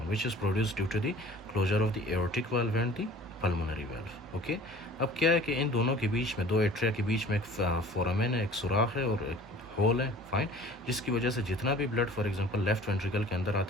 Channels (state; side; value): normal; both; correlation 0.47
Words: which is produced due to the closure of the aortic valve and the pulmonary valve. Okay, अब क्या है कि इन दोनों के बीच में, दो एट्रिया के बीच में एक फोरामेन है, एक सुराख है और एक होल है। फाइन, जिसकी वजह से जितना भी blood for example left ventricle के अंदर